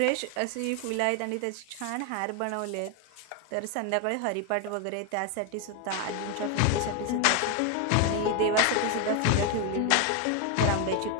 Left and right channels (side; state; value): both; different; correlation 0.01